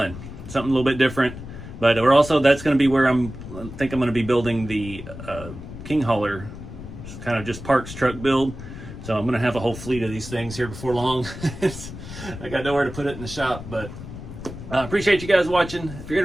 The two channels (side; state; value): left; noise; rumble, 12 dB below the sound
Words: Something a little bit different. But we're also, that's going to be where I think I'm going to be building the King Hauler, kind of just parks truck build. So I'm going to have a whole fleet of these things here before long. I got nowhere to put it in the shop, but I appreciate you guys watching. If you're